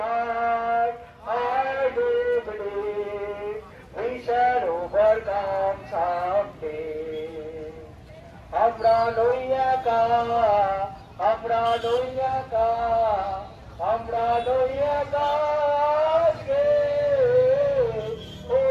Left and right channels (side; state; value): both; identical; correlation 1.00